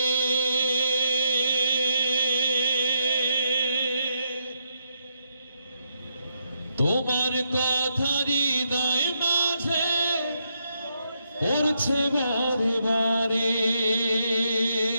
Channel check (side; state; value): both; inverted; correlation -0.78